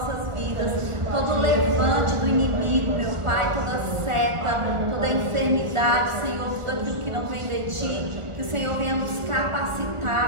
vidas, todo o levante do inimigo, meu Pai, toda seta, toda enfermidade, Senhor, tudo aquilo que não vem de Ti, que o Senhor venha nos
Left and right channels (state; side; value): late; left; 1.4 ms